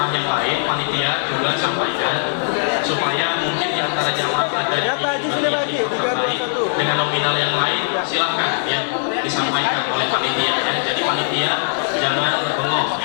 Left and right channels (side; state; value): right; silent; digital silence